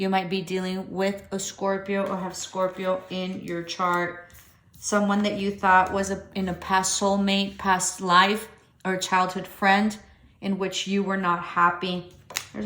might be dealing with a Scorpio or have Scorpio in your chart. Someone that you thought was in a past soulmate, past life, or a childhood friend in which you were not happy.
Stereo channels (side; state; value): both; identical; correlation 1.00